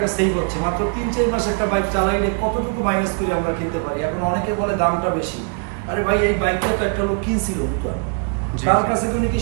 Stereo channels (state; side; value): quieter; left; 40.0 dB